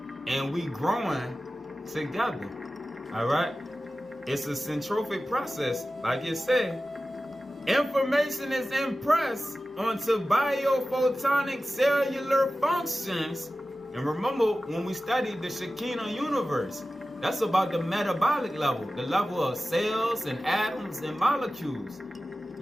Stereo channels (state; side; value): normal; both; correlation 0.95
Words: and we growing together, all right? It's a centropic process, like it said. Information is impressed onto biophotonic cellular functions. And remember, when we studied the Shekinah universe, that's about the metabolic level, the level of cells and atoms and molecules.